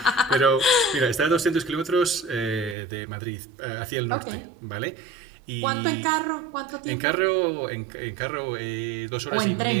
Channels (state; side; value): drops out; left; at 2.8 s